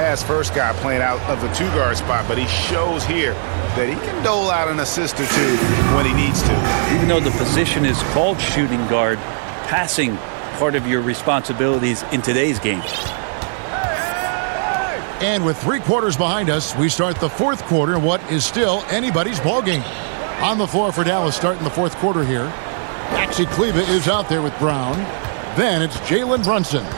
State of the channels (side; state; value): left; silent; digital silence